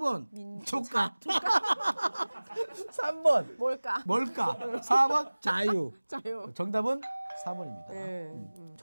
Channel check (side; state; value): both; inverted; correlation -1.00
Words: 조카. 3번 뭘까? 4번 자유. 정답은 4번입니다.